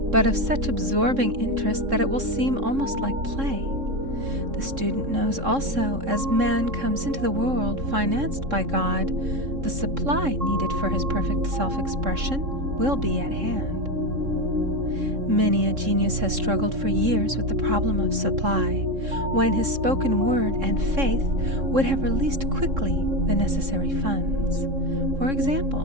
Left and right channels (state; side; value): late; left; 3.7 ms